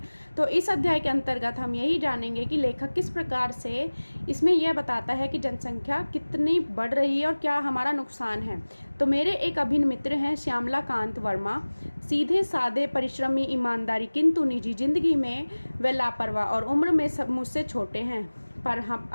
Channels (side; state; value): both; inverted; correlation -1.00